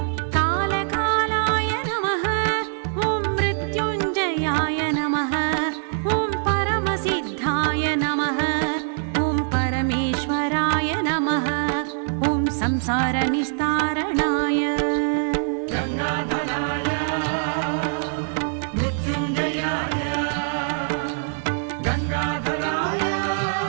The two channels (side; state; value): left; silent; 63 dB below the other